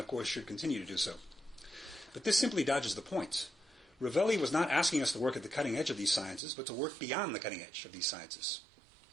course should continue to do so. But this simply dodges the point. Ravelli was not asking us to work at the cutting edge of these sciences, but to work beyond the cutting edge of these sciences.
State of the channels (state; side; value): drops out; left; at 6.4 s